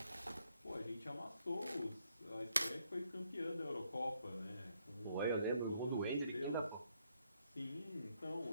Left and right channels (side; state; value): both; inverted; correlation -0.75